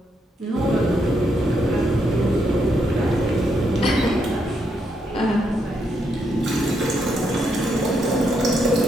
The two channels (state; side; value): normal; both; correlation 0.78